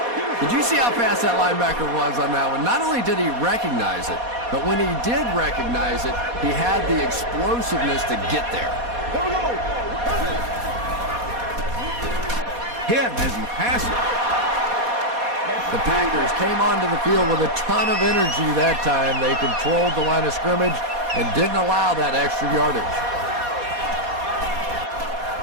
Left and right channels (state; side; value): late; left; 4.2 ms